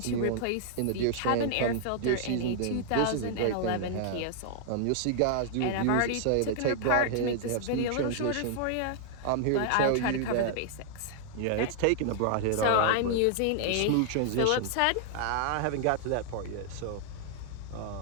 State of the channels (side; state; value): both; different; correlation 0.00